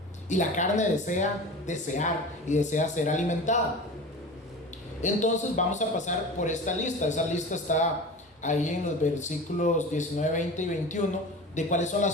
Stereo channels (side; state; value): both; normal; correlation 0.34